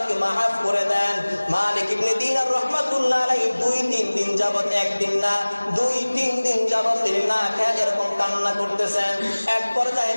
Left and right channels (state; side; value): inverted; both; correlation -1.00